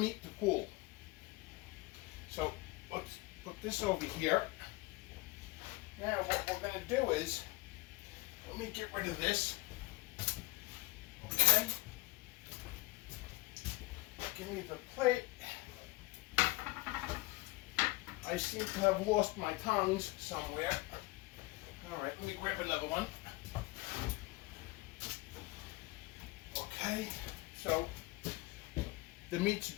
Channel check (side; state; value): right; quieter; 21.7 dB